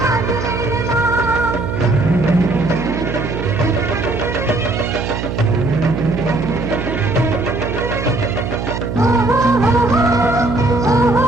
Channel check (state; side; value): noise; right; hum, 5 dB below the sound